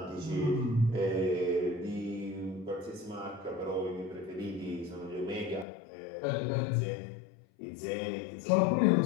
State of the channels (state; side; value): drops out; right; at 5.7 s